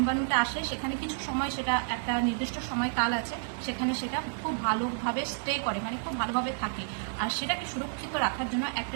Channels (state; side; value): silent; left; digital silence